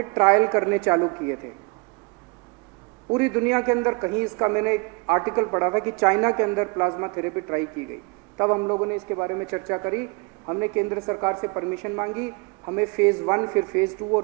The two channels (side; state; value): left; quieter; 29.8 dB